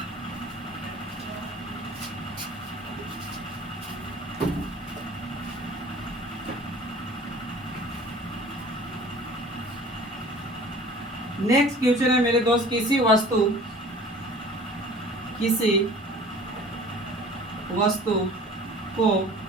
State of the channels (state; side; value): normal; both; correlation 0.46